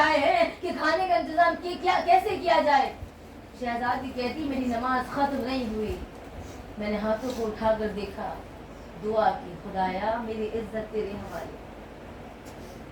हैं कि खाने का इंतजाम कैसे किया जाए। शहजादी कहती, मेरी नमाज खत्म नहीं हुई, मैंने हाथों को उठाकर देखा, दुआ की, खुदाया मेरी इज्जत तेरे हवाले।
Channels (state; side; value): identical; both; correlation 1.00